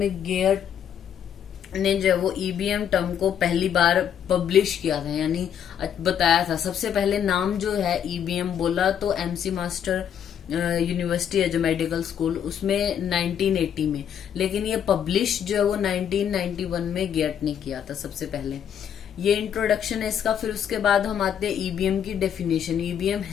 गेट ने जो वो ईबीएम टर्म को पहली बार पब्लिश किया था, यानी बताया था। सबसे पहले नाम जो है ईबीएम बोला तो एमसी मास्टर यूनिवर्सिटी है जो मेडिकल स्कूल, उसमें 1980 में, लेकिन ये पब्लिश जो है वो 1991 में गेट ने किया था सबसे पहले। ये इंट्रोडक्शन है इसका। फिर उसके बाद हम आते हैं ईबीएम की डेफिनेशन। ईबीएम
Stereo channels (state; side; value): quieter; right; 8.9 dB